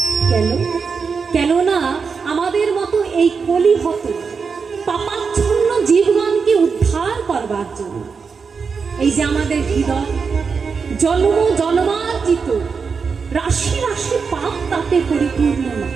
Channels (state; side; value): quieter; left; 5.5 dB